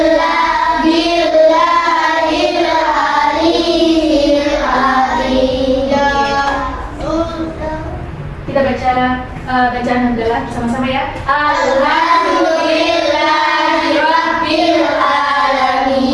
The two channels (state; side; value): identical; both; correlation 1.00